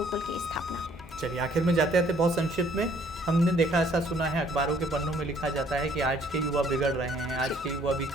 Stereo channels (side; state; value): both; normal; correlation 0.62